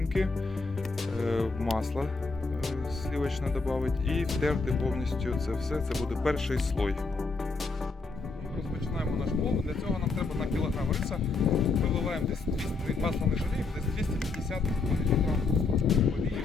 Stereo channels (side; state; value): right; quieter; 4.0 dB